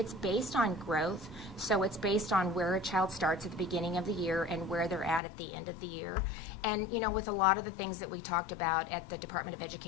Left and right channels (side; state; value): right; drops out; at 5.2 s